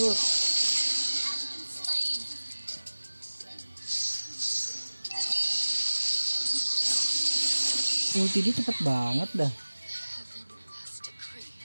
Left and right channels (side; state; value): both; inverted; correlation -1.00